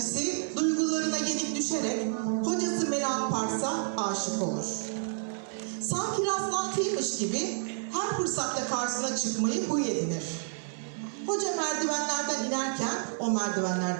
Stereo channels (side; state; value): left; silent; 58 dB below the other